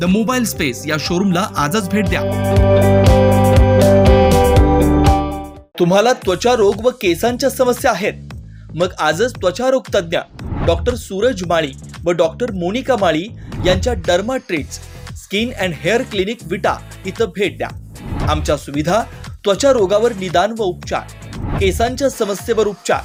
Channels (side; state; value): both; identical; correlation 1.00